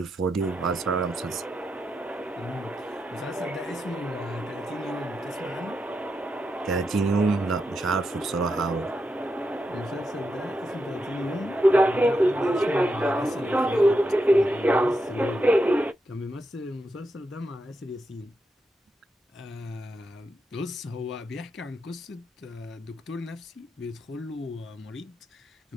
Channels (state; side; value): normal; both; correlation 0.84